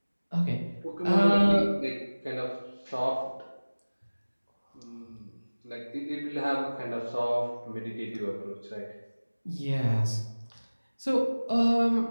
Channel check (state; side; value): inverted; both; correlation -1.00